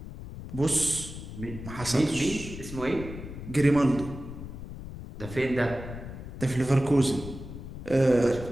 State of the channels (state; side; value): noise; left; rumble, 11 dB below the sound